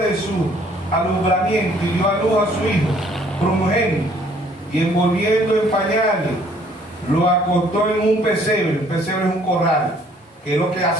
de su alumbramiento y dio a luz a su hijo primogénito, y envolviendo en pañales, lo acostó en un pesebre. Un pesebre es un corral, que es lo que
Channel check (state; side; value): normal; both; correlation 0.60